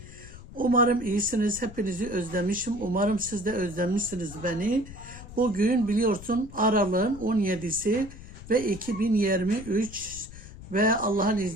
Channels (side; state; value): left; noise; rumble, 15 dB below the sound